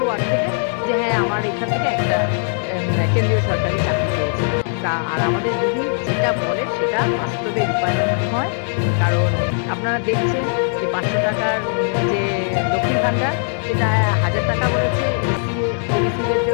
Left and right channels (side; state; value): right; silent; 66 dB below the other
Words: ওয়ার্ড থেকে যে হ্যাঁ আমার এখান থেকে একটা কেন্দ্রীয় সরকারি চাকরি পেয়েছে। তা আর আমাদের দিদি যেটা বলে সেটা বাস্তবে রূপায়ণ হয়। কারণ আপনারা দেখছেন যে 500 টাকার যে লক্ষ্মীর ভাণ্ডার, সেটা 1000 টাকা বলেছে, এসি ওবিসিদের